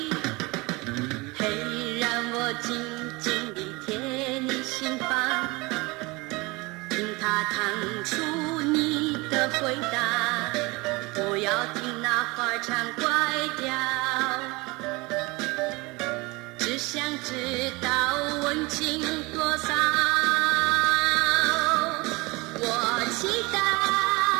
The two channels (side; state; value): left; quieter; 24.7 dB